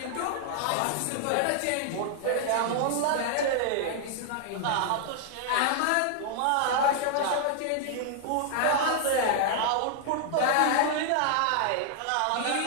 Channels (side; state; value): both; different; correlation 0.00